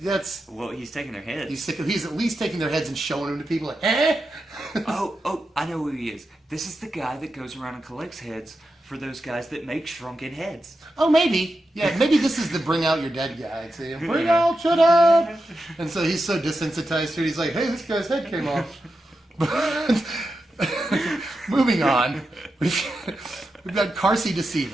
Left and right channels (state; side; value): normal; both; correlation 0.89